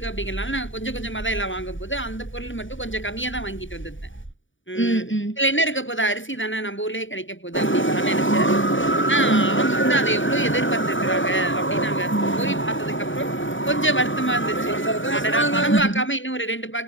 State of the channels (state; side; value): late; right; 0.56 ms